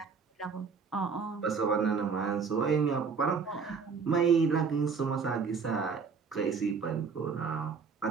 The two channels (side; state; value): left; quieter; 5.6 dB